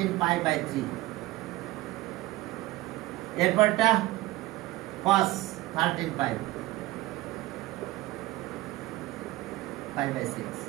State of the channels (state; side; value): quieter; left; 18.5 dB